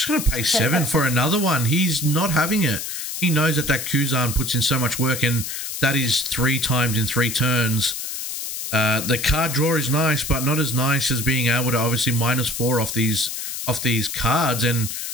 going to pay 7 for another one. He's not having it. He knows that Kuzan puts in so much work, and that is 3 times in 3 turns. The card draw is nice, but not as nice as being able to obviously -4 off these cards. And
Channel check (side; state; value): left; noise; hiss, 5 dB below the sound